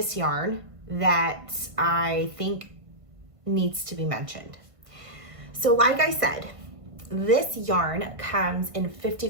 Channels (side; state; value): left; late; 1.5 ms